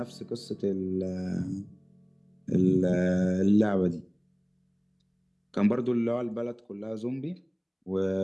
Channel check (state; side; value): identical; both; correlation 1.00